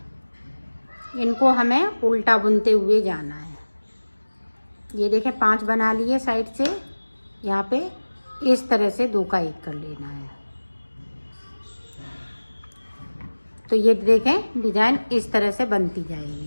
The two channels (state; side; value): inverted; both; correlation -1.00